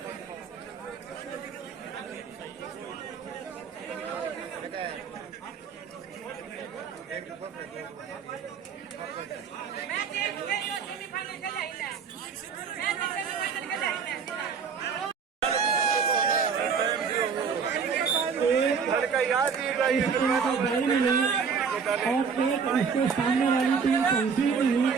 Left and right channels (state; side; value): quieter; left; 6.0 dB